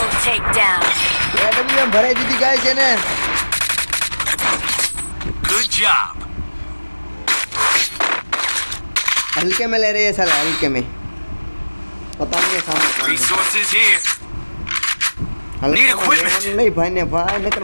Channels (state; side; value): inverted; both; correlation -1.00